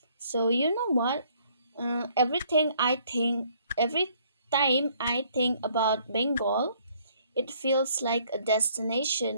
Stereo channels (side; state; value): both; inverted; correlation -0.63